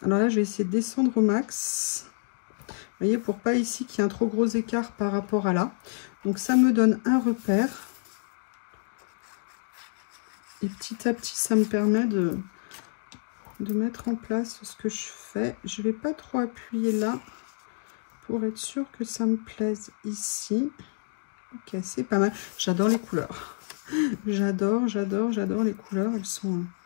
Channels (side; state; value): right; silent; digital silence